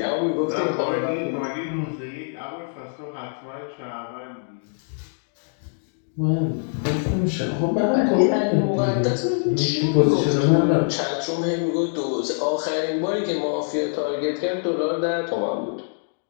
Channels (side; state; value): right; silent; digital silence